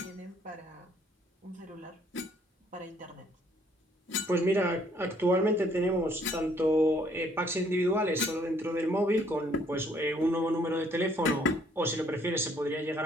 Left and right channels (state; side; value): normal; both; correlation 0.64